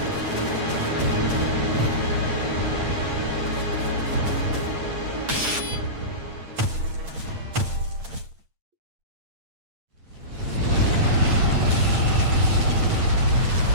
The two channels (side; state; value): left; late; 8.8 ms